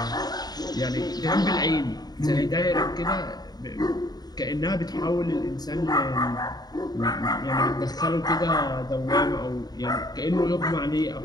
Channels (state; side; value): late; right; 0.19 ms